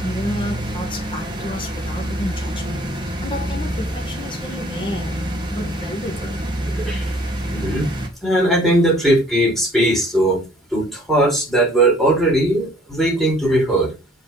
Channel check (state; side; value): normal; both; correlation 0.57